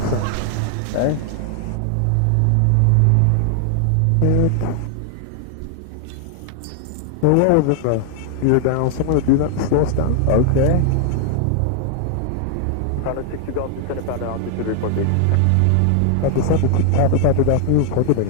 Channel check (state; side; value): different; both; correlation 0.00